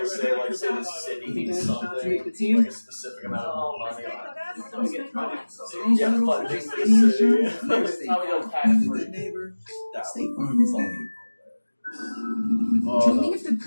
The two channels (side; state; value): both; inverted; correlation -1.00